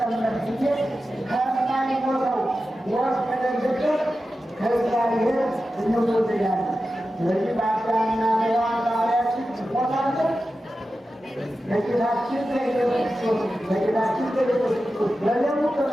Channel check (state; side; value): normal; both; correlation 0.92